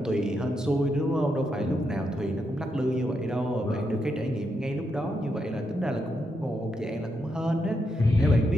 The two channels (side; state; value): both; normal; correlation 0.82